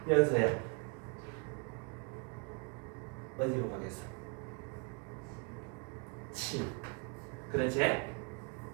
연서야 어디로 가겠어? 7 그렇지?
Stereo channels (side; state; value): left; quieter; 33.5 dB